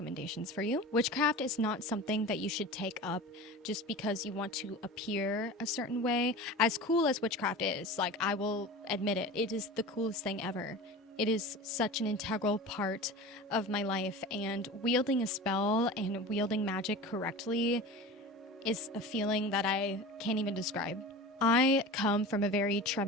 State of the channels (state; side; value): normal; both; correlation 0.33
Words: for you. Witchcraft is not something that you should take up just because you want to appear a certain way. As cool as witchcraft is, like, I will admit it, it is the coolest thing ever. It is such an integral part of my life, and wielding a spell and wielding magic correctly is a feeling that I can't even describe. I come from a very